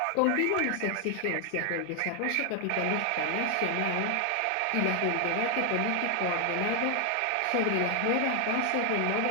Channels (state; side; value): different; both; correlation 0.00